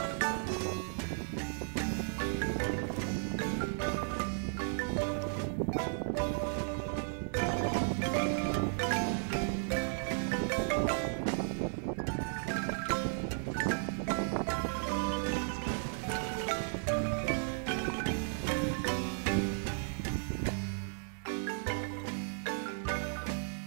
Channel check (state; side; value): silent; left; digital silence